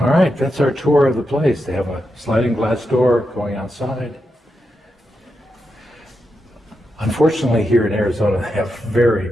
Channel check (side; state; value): both; normal; correlation 0.86